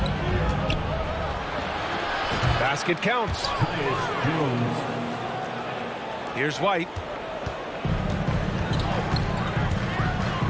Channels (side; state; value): both; identical; correlation 1.00